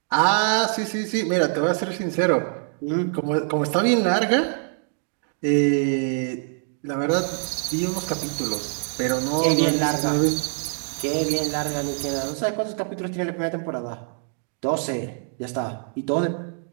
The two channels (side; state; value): left; silent; 56 dB below the other